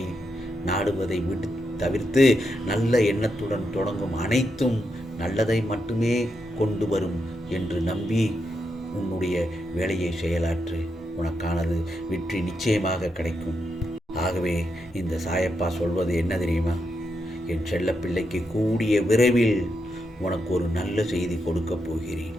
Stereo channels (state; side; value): normal; both; correlation 0.83